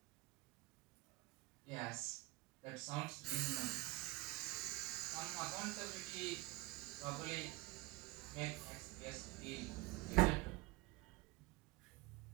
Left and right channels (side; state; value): left; quieter; 21.0 dB